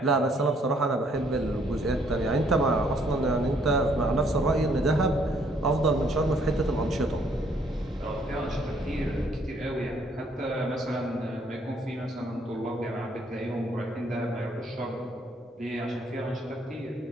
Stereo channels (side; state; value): both; normal; correlation 0.66